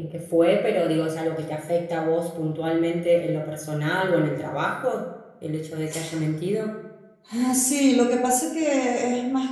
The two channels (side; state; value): both; identical; correlation 1.00